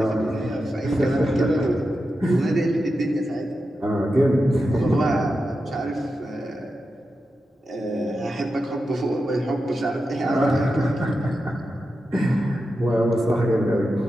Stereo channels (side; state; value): both; normal; correlation 0.90